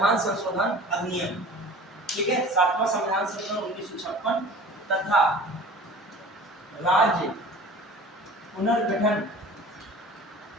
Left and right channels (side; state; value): both; normal; correlation 0.42